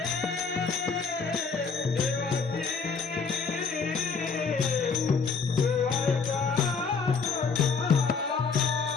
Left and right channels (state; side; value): quieter; right; 5.3 dB